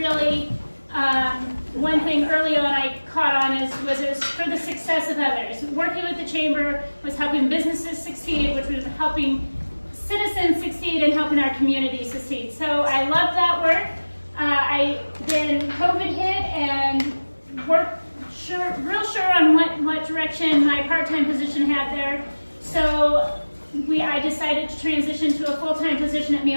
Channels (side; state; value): both; inverted; correlation -1.00